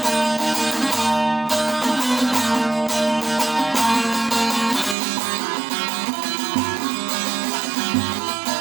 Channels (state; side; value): drops out; left; at 5.0 s